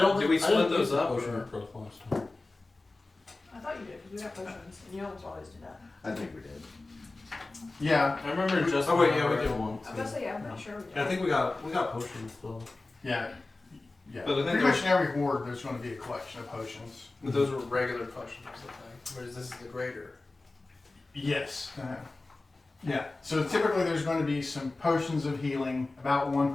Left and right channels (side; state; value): right; quieter; 3.2 dB